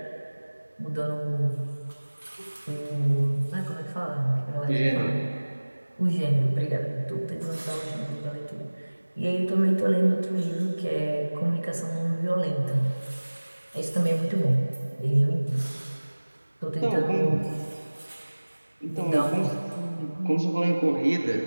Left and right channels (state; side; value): inverted; both; correlation -1.00